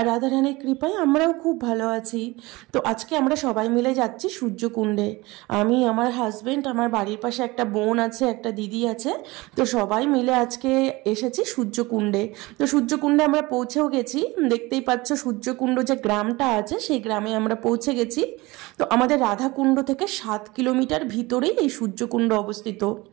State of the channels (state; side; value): quieter; left; 21.9 dB